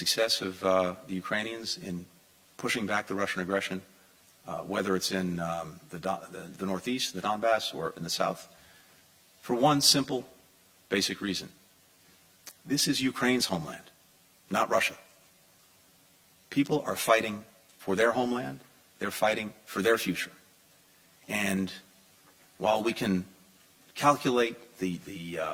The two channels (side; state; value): both; identical; correlation 1.00